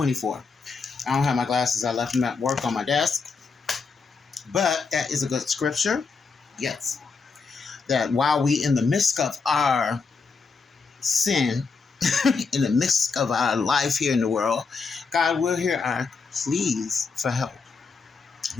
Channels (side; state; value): right; quieter; 4.9 dB